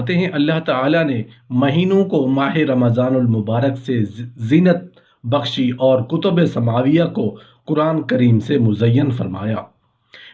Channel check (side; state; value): both; identical; correlation 1.00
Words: हैं, अल्लाह ताला ने महीनों को माह रमज़ानुल मुबारक से जीनत बख्शी और कुतुब समाविया को कुरान करीम से मुज़य्यन फरमाया।